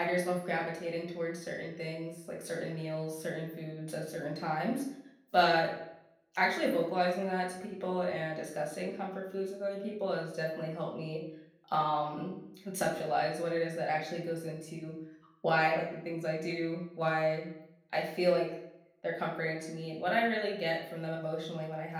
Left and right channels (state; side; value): identical; both; correlation 1.00